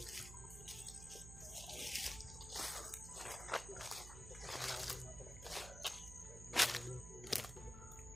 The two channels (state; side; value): noise; right; hum, 10 dB below the sound